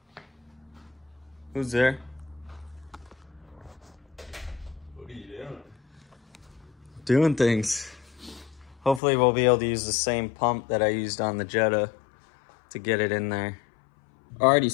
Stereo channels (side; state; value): right; drops out; at 9.0 s